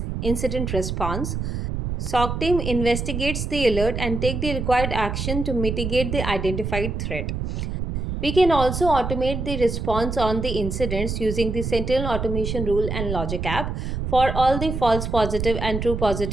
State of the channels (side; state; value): right; noise; rumble, 3 dB below the sound